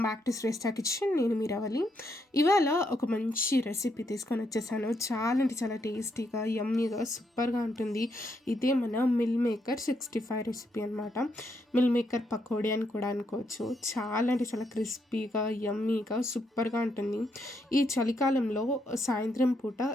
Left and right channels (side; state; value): both; normal; correlation 0.78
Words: back to Shreshta kitchen. నేను మీ రవలి. ఇవాళ ఒక మంచి రెసిపీ తీసుకొని వచ్చేసాను. చాలా అంటే చాలా టేస్టీగా, యమ్మీగా, సూపర్గా ఉంటుంది. ఇదే మన మిల్ మేకర్ 65 రెసిపీ అనమాట. మిల్ మేకర్ పకోడీ అని కూడా అనుకోవచ్చు. చాలా అంటే చాలా క్రిస్పీగా, యమ్మీగా, సూపర్గా ఉంటుంది. ఈ చలికాలంలో సాయంత్రం పూట